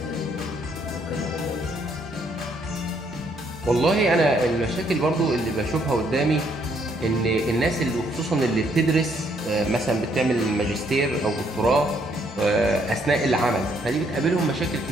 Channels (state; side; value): normal; both; correlation 0.70